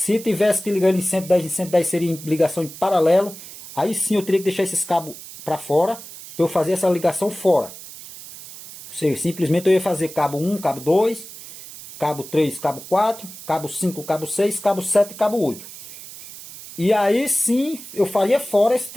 tivesse que ligar ele em 110 seria em ligação em paralelo. Aí sim eu teria que deixar esses cabos para fora, para eu fazer essa ligação fora. Ou seja, simplesmente eu ia fazer cabo 1, cabo 2, cabo 3, cabo 4, cabo 5, cabo 6, cabo 7 e cabo 8. E aí sim eu faria fora esse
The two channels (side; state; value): right; noise; hiss, 15 dB below the sound